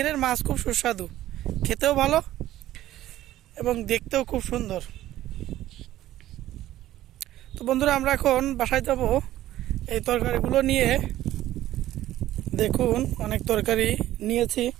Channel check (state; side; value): quieter; left; 14.0 dB